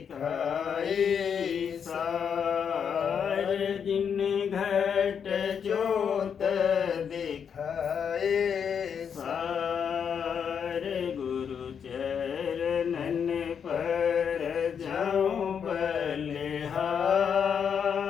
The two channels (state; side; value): quieter; right; 7.3 dB